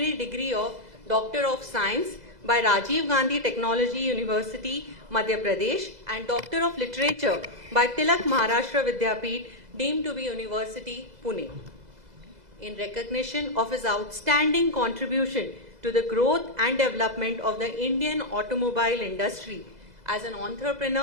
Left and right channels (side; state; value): left; late; 2.0 ms